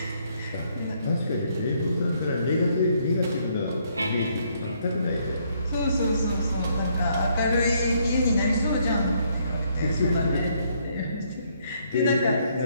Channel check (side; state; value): both; inverted; correlation -0.69